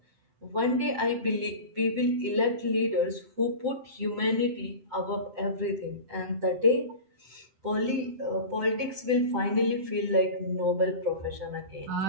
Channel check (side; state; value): left; late; 7.8 ms